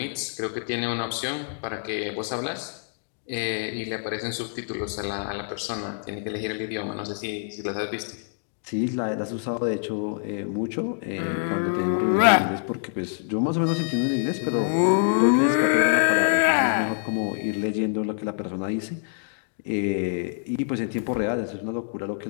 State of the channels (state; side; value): silent; right; digital silence